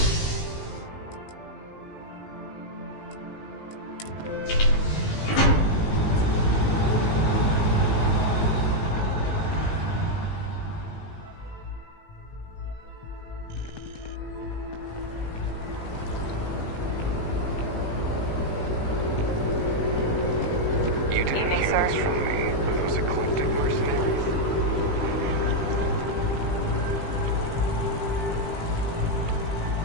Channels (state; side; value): late; right; 19 ms